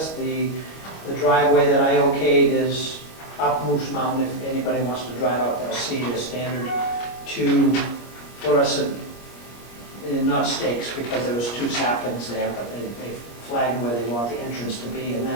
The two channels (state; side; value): late; right; 25 ms